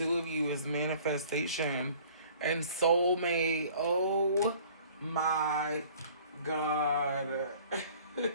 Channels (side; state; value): both; inverted; correlation -0.51